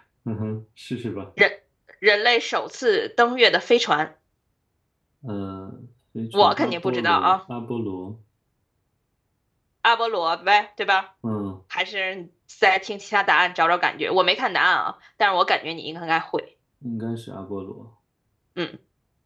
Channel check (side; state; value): both; identical; correlation 1.00